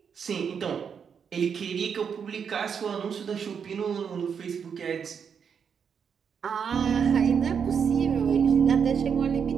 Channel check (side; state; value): left; quieter; 6.9 dB